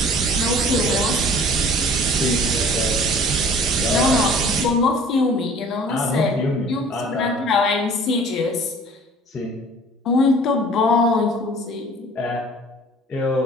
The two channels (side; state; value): both; normal; correlation 0.49